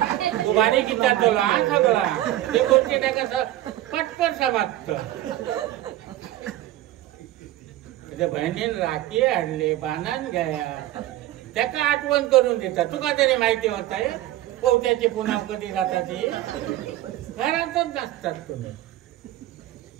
तू गाडी किती तुला सगळा ते गोष्टी टाकायचं पटपट समाप्त त्याच्या बहिणीन राखी आणले बाणान घ्या त्याका आठवण करून देतात तुका तरी माहिती होत आहे पोहत्याची पुन्हा कधी जाताची घरातच नसतात तुम्ही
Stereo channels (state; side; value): quieter; left; 14.6 dB